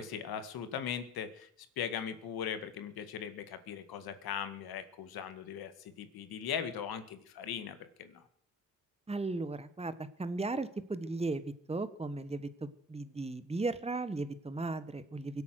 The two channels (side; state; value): both; normal; correlation 0.45